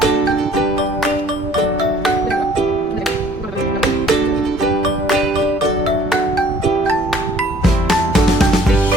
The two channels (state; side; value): normal; both; correlation 0.56